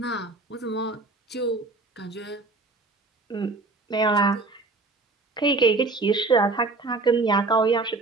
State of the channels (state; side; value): quieter; left; 3.5 dB